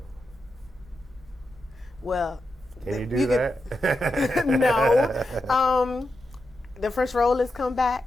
Well, can you do that? No. The French roll has come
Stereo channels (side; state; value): both; normal; correlation 0.87